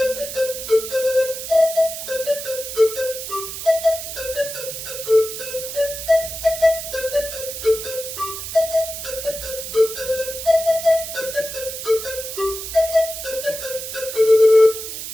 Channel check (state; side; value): noise; right; hiss, 8 dB below the sound